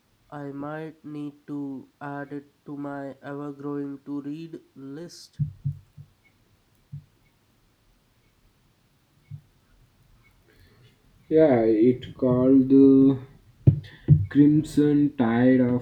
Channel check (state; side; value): identical; both; correlation 1.00